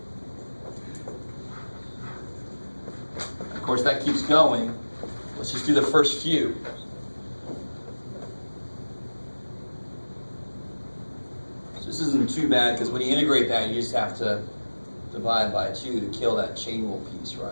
Of course, that keeps going. Let's just do the first few. So this isn't too bad, because when you integrate that, you just have to divide by 2 to kill that chain rule piece,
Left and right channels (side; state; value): both; inverted; correlation -1.00